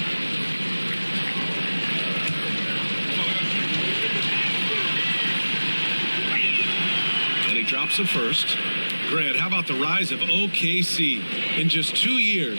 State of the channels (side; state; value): both; inverted; correlation -1.00